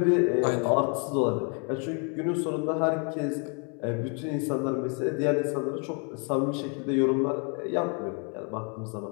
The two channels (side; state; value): right; quieter; 37.4 dB